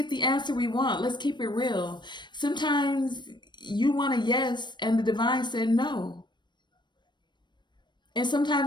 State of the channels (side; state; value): right; late; 0.22 ms